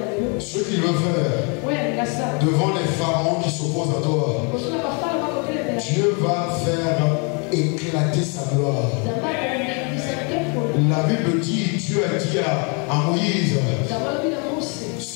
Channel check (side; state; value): right; quieter; 35.1 dB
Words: ce qu'il veut faire devant les pharaons qui s'opposent à toi, Dieu va faire éclater sa gloire. La Bible dit, Dieu a dit à Moïse,